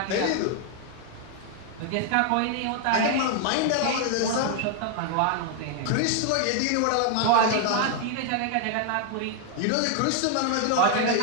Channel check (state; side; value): different; both; correlation 0.00